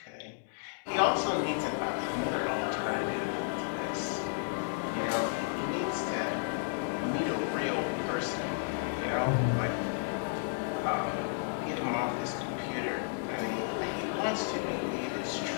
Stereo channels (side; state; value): right; silent; digital silence